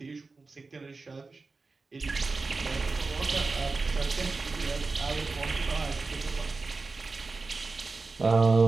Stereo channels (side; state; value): left; quieter; 3.9 dB